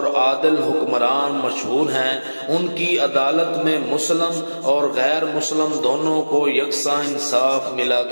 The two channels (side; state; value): both; inverted; correlation -1.00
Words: عادل حکمران مشہور ہیں۔ ان کی عدالت میں مسلم اور غیر مسلم دونوں کو یکساں انصاف ملا